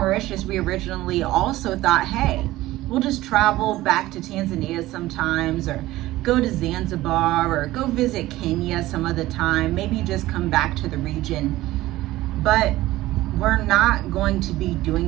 we originally also thought, hey, we'll just travel back to Tanzania sometimes, or go to Zanzibar, or go visit Kenya some other time, maybe just come back to the region. But we're not going to be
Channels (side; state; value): left; quieter; 16.8 dB